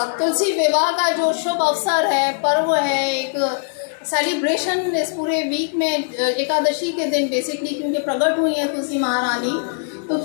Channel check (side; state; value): right; silent; digital silence